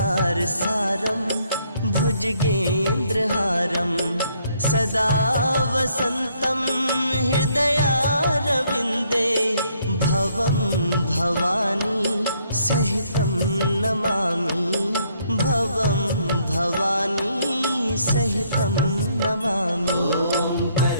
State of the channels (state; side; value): inverted; both; correlation -0.69